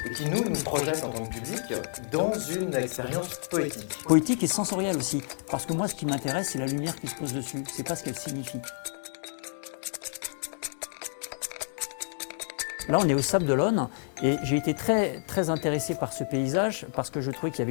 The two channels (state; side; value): silent; right; digital silence